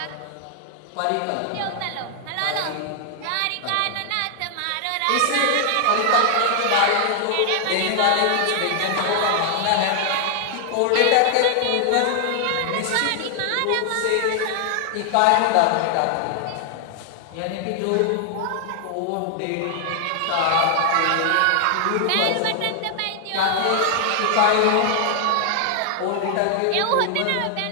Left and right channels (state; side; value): different; both; correlation 0.00